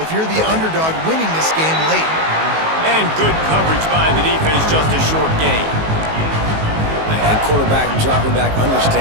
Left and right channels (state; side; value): late; left; 19 ms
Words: you're the underdog winning this game late. And good coverage by the defense, just a short gain. And quarterback dropping back,